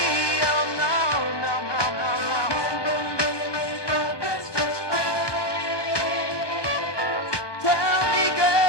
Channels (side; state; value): right; late; 1.2 ms